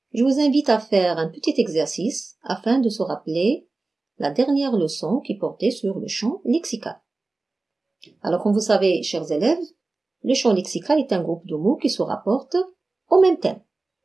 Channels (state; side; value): quieter; left; 3.3 dB